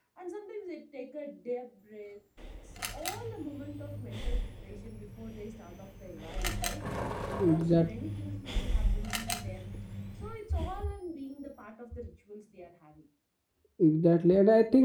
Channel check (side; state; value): both; identical; correlation 1.00